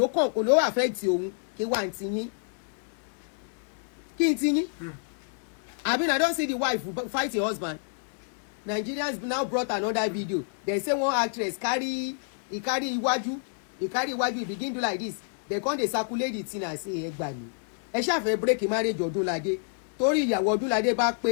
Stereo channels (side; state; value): right; silent; digital silence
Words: ló affect òun kí wà ń tiyín. Kí n tiyín? I don't see the wife fight her husband. Nigerians now brought another video. They say one actress carry iwájú. He carry iwájú, he begin do like this. They come dey circulate the thing and say egba ni. Ẹ ṣá fẹ́ break marriage Odunlade. Torí ìyàwó Odunlade bá